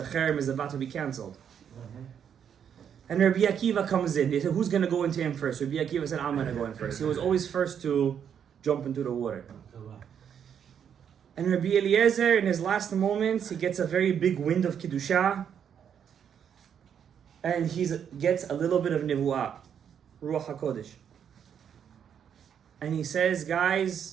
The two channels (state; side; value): quieter; left; 8.3 dB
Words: Cherem is about to be cancelled. And Rabbi Akiva comes in. They said, who's going to go into him first? Rabbi Akiva said, I'm going to go in first. He was always first to jump into the water. And Rabbi Eliezer, in his last moments, he gets a very big wind of Kiddusha. And he gets a little bit of Nevuah, Ruach HaKodesh. And he says,